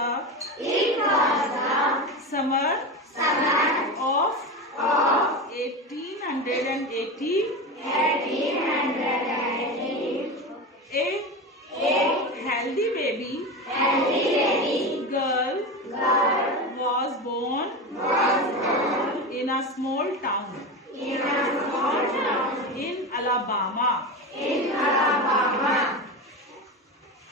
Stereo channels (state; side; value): normal; both; correlation 0.22